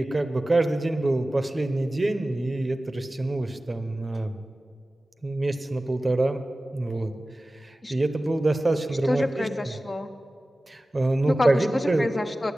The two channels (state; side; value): normal; both; correlation 0.96